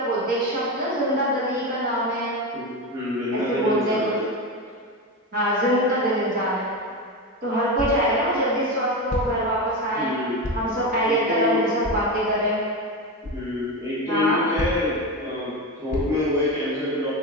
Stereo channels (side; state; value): both; normal; correlation 0.18